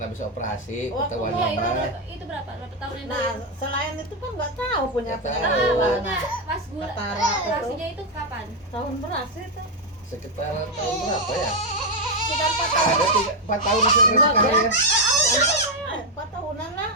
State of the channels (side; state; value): both; normal; correlation 0.02